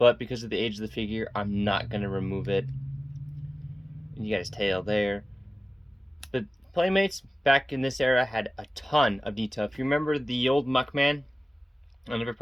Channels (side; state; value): both; normal; correlation 0.96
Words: because of the age of the figure, I'm not going to remove it. And you got his tail there. But Playmates back in this era had a ton of detail. If you remember the old Muckman, I never